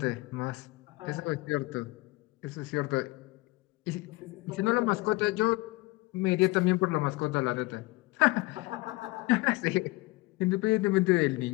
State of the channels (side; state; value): right; quieter; 21.7 dB